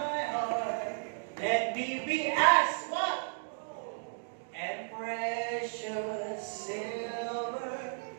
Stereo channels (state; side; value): silent; left; digital silence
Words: heart. Let me be as what? And precious silver.